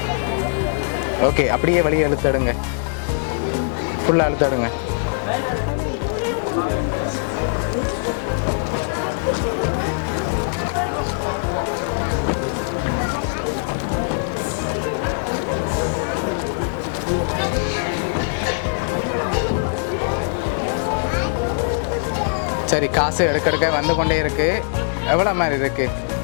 ஓகே, அப்படியே வெளியே எடுத்துடுங்க. ஃபுல்லாக எடுத்துடுங்க. சரி, காசு எடுக்க வந்து கொண்டே இருக்கு. எவ்வளோ மாதிரி இருக்கு?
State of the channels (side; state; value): right; silent; 65 dB below the other